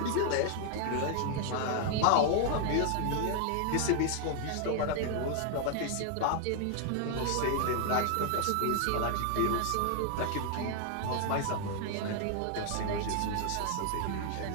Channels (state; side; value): different; both; correlation 0.00